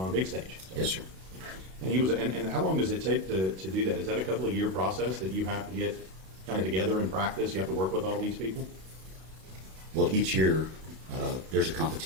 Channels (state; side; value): late; left; 32 ms